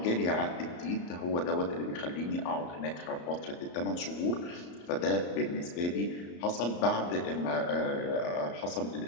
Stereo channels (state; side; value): late; right; 34 ms